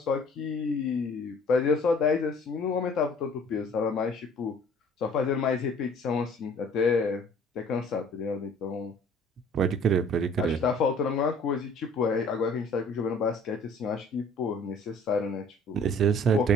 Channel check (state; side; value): normal; both; correlation 0.52